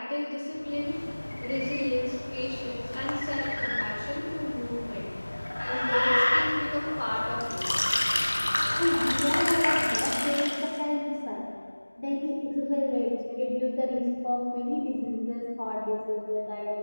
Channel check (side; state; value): both; inverted; correlation -1.00